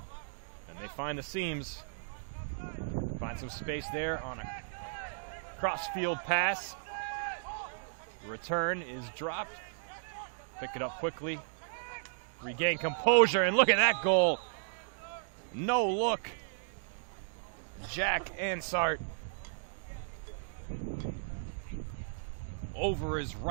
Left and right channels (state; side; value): silent; left; digital silence